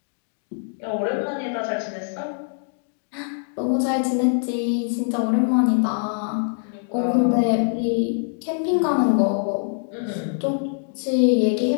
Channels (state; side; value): silent; right; 63 dB below the other